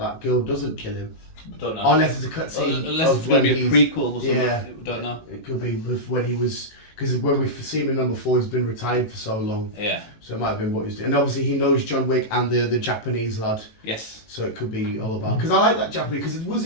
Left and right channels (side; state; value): right; late; 18 ms